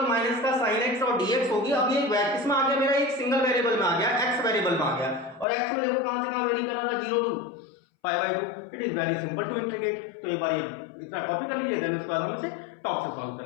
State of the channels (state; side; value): drops out; right; at 5.5 s